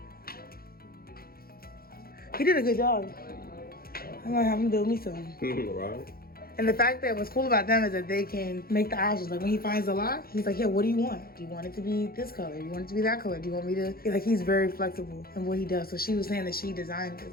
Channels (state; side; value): late; right; 0.44 ms